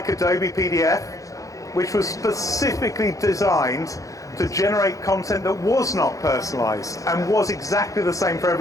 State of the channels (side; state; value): right; late; 0.16 ms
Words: Adobe PDF, which was specifically designed to generate content that was not personalized and was exactly the same for